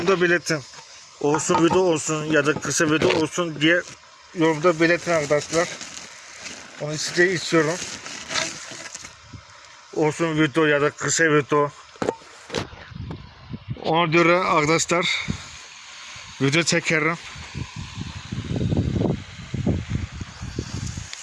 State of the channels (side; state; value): both; identical; correlation 1.00